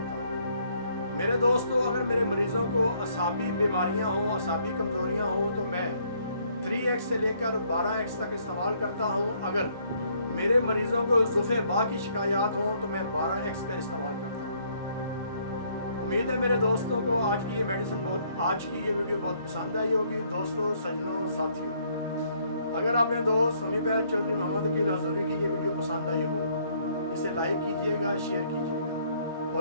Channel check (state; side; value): inverted; both; correlation -0.66